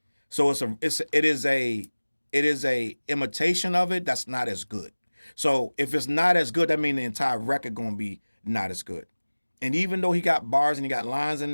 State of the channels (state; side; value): inverted; both; correlation -1.00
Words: So it is a imitation of it that's not as good. So if it's not as good, that means the entire record gonna be not as good. And even though he got bars and he got lines in